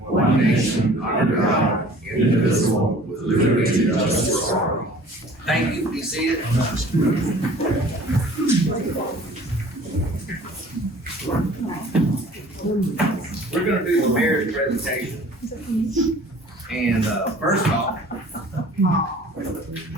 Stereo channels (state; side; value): normal; both; correlation 0.48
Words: nation, under God, indivisible, with liberty and justice for all. Thank you. Be seated. We're going to do the mayor's presentation. And first off,